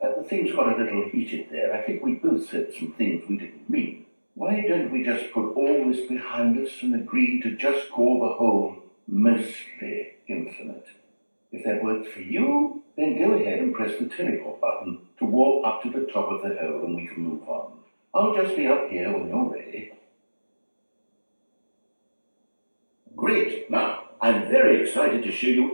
things got a little heated there. I think we both said some things we didn't mean. Why don't we just put all this behind us and agree to just call the hole mostly infinite? If that works for you, then go ahead and press the teleport button to walk up to the top of the hole and we can move on. I'll just be up here when you're ready. Great. Now, I'm very excited to show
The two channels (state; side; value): inverted; both; correlation -1.00